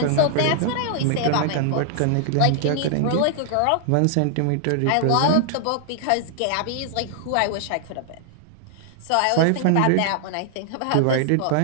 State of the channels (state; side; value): different; both; correlation -0.01